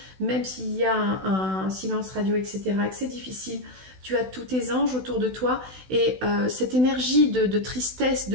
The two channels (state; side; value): late; left; 16 ms